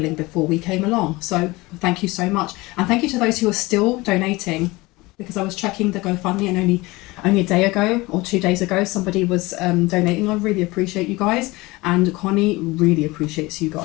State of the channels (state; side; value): quieter; right; 21.9 dB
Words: before we came along. So thank you so much. And thank you to those who are still donating, because I was checking the GoFundMe and only a day ago or 2 days ago somebody was donating. I really appreciate you guys, and Connie really appreciates you